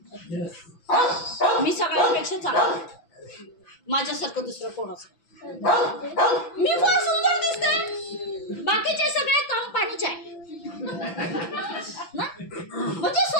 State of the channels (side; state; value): right; late; 6.0 ms